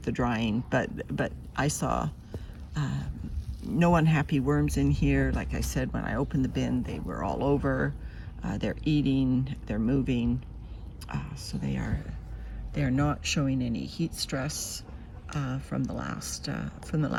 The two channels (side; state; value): both; identical; correlation 1.00